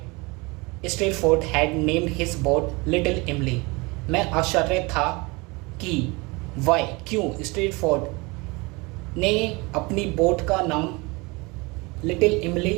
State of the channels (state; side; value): quieter; left; 25.9 dB